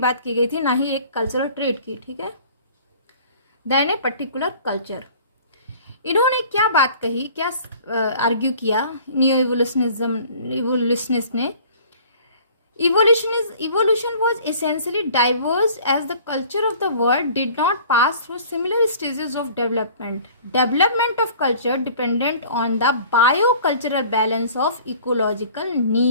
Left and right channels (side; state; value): both; inverted; correlation -0.49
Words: की गई थी, ना ही एक कल्चरल ट्रेट की, ठीक है, देन ए पर्टिकुलर कल्चर। इन्होंने क्या बात कही, क्या आर्ग्यू किया न्यू इवोल्यूशनिस्ट ने? Evolution was essentially diverse as the culture of the world did not pass through similar stages of development. Development of culture dependent on the biocultural balance of ecological